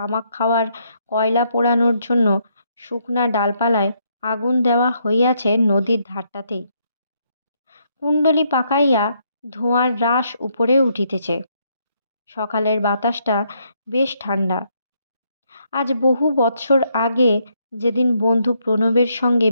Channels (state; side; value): inverted; both; correlation -0.74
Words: খাওয়ার কয়লা পোড়ানোর জন্য শুকনা ডালপালায় আগুন দেওয়া হইয়াছে নদীর ধারটাতেই। কুণ্ডলি পাকাইয়া ধোঁয়ার রাশ উপরে উঠিতেছে। সকালের বাতাসটা বেশ ঠান্ডা। আজ বহু বৎসর আগে যেদিন বন্ধু প্রণবের সঙ্গে